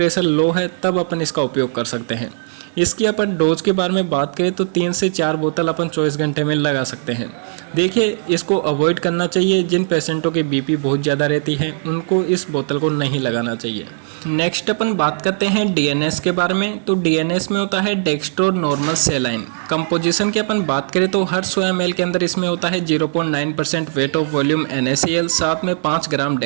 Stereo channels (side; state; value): left; silent; 66 dB below the other